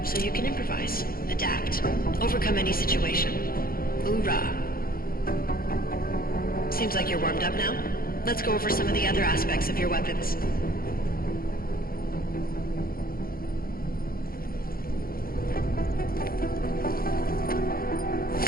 so you can improvise, adapt, overcome any situation. Hoorah! Seems like you're warmed up now. Let's go over some of the other aspects of your weapons.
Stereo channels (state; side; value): late; right; 0.43 ms